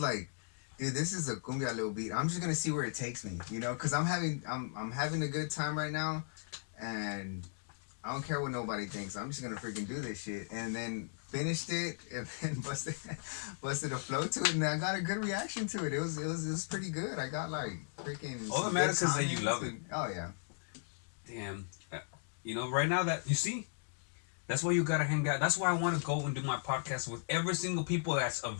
dude, this is a cumbia little beat. I'm just gonna see where it takes me, because I'm having a good time right now, and I don't care what nobody thinks. I'm just gonna freaking do this shit. And then finished it, and then busted a flow to it, and I got a good reaction to it. It was pretty good. I got like freaking. All that some matters good is that you comments love it. and- Oh yeah. Damn. Right now that you see, that's why you gotta hang out. That's why I want to go and do my podcast with every single people that's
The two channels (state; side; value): silent; right; digital silence